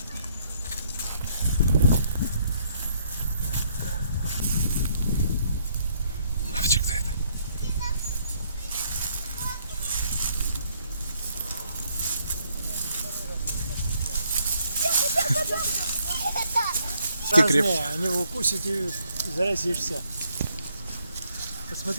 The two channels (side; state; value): both; inverted; correlation -0.69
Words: Мальчик, кто это? Ты креп... Разные, они его укусят и заразишься.